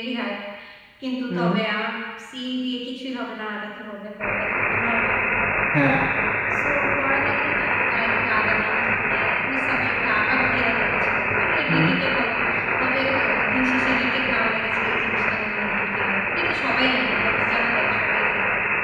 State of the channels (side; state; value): both; identical; correlation 1.00